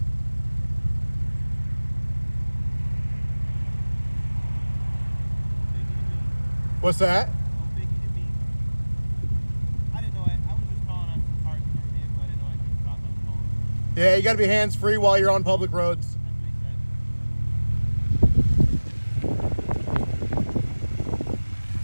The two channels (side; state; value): both; inverted; correlation -1.00